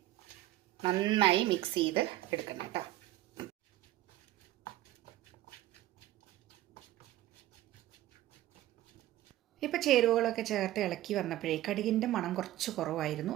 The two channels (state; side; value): quieter; left; 14.8 dB